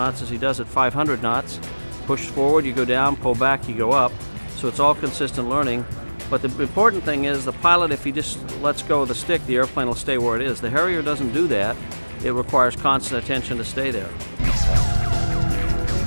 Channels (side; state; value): both; inverted; correlation -1.00